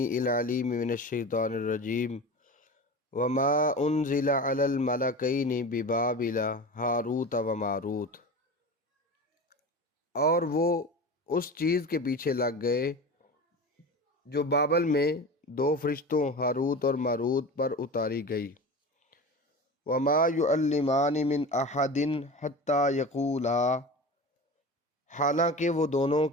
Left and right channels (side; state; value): both; normal; correlation 0.30